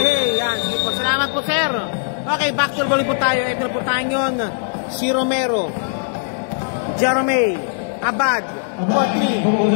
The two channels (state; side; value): silent; right; 59 dB below the other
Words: yan. Sige po. Salamat po sir. Okay, back to the ball game po tayo. Ito na po tayo yun. Si Romero. Jaromay. Abad.